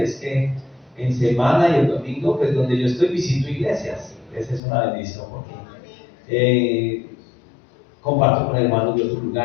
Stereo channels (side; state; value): right; drops out; at 4.6 s